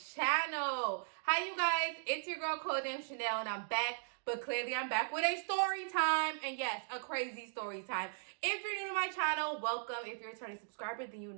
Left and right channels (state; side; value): silent; left; digital silence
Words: Hi you guys, it's your girl Codenamechanel and I'm back, but clearly I'm back with a story time. And yes, a crazy story time. If you're new to my channel, welcome. If you're a returning subscriber, then you